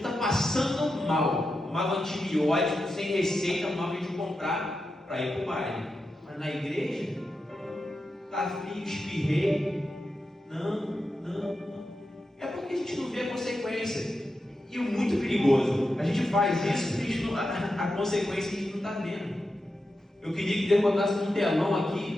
passando mal, tomava antibiótico sem receita, tomava de comprar para ir para o baile. Mas na igreja, está frio, espirrei. Não. É porque a gente não vê a consequência. E o muito perigoso, a gente faz isso, a consequência a gente não está vendo. Eu queria que Deus botasse um telão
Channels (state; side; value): normal; both; correlation 0.89